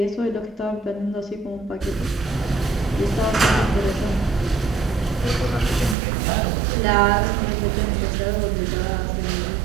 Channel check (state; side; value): drops out; left; at 6.0 s